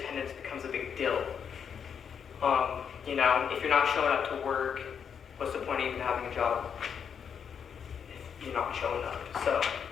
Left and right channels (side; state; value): right; quieter; 7.3 dB